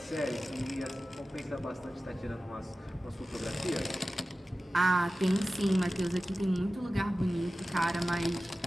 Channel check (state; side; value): normal; both; correlation 0.96